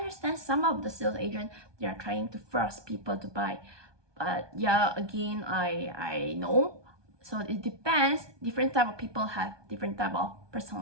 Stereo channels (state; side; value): late; left; 1.2 ms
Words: some of the sales agents, they are trying to force people to buy. But yeah, again, I know. So it depends. Different type of people have different type of